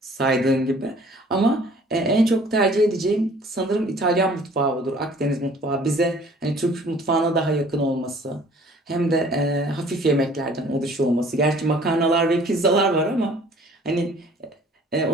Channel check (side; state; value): both; normal; correlation 0.53